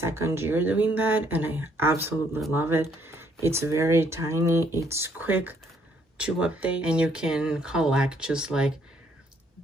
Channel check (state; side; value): normal; both; correlation 0.68